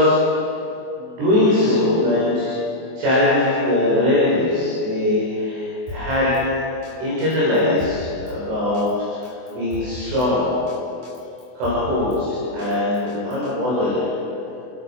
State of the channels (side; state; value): left; late; 24 ms